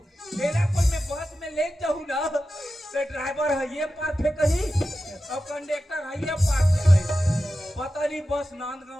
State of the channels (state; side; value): normal; both; correlation 0.92